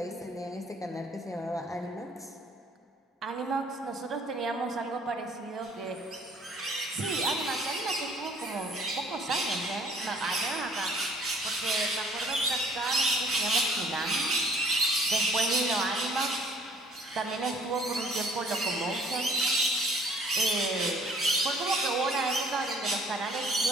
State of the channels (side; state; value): both; normal; correlation 0.57